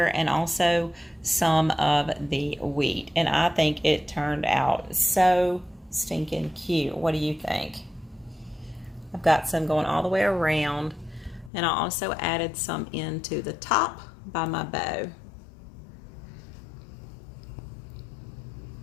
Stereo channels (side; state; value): right; drops out; at 11.5 s